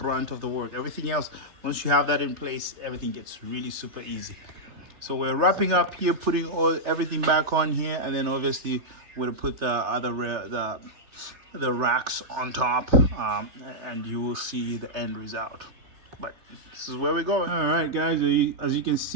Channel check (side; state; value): left; late; 3.3 ms